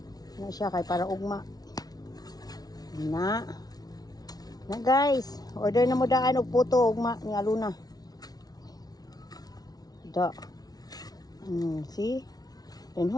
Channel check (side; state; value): right; late; 0.19 ms